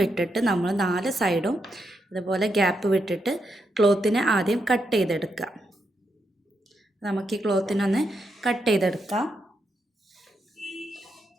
വിട്ടിട്ട് നമ്മൾ 4 സൈഡും ഇതുപോലെ ഗ്യാപ്പ് വിട്ടിട്ട് ക്ലോത്തിനെ ആദ്യം കട്ട് ചെയ്തെടുക്കുക. നമുക്ക് ഈ ക്ലോത്തിനൊന്ന് കട്ട് ചെയ്തെടുക്കാം.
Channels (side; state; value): both; normal; correlation 0.82